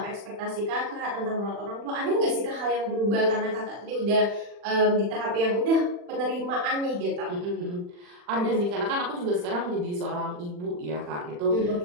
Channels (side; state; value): left; late; 40 ms